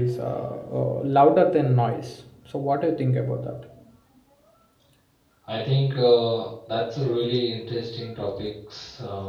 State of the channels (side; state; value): both; identical; correlation 1.00